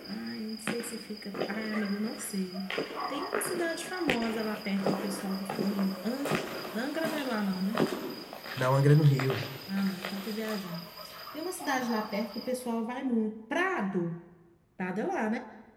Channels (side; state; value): both; identical; correlation 1.00